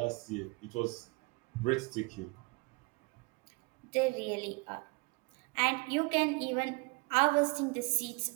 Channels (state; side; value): quieter; left; 28.8 dB